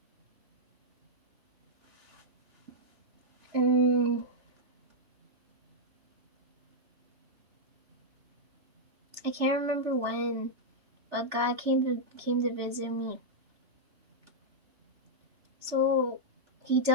Mm, I can't remember when, but God came to visit me. So he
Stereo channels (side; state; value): left; late; 3.3 ms